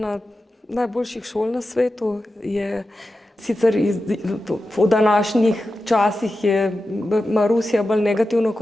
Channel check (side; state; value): both; normal; correlation 0.92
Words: najboljših šol na svetu. Sicer v današnjih časih ima Rusija bolj negativno